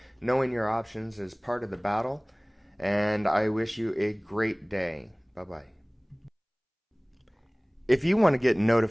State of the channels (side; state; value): both; identical; correlation 1.00